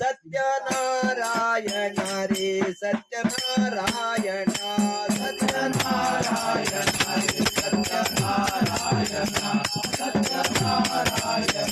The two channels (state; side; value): identical; both; correlation 1.00